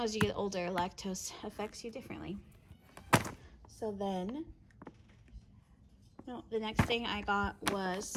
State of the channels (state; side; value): identical; both; correlation 1.00